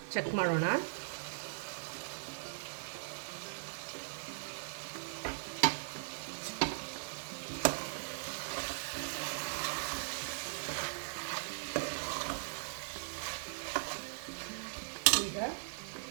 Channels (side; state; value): left; silent; digital silence